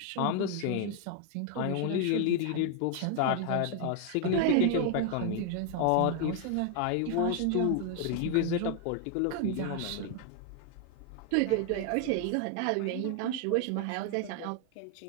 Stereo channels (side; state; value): both; different; correlation 0.00